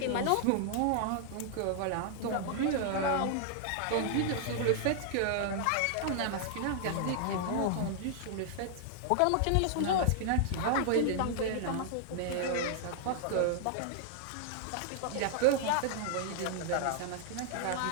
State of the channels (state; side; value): different; both; correlation -0.01